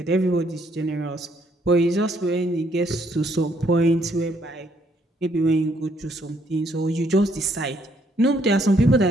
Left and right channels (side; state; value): both; normal; correlation 0.69